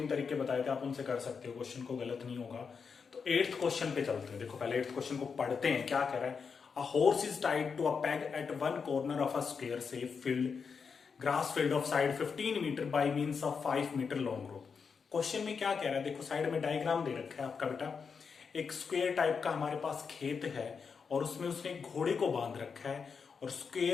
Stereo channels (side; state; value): right; quieter; 5.8 dB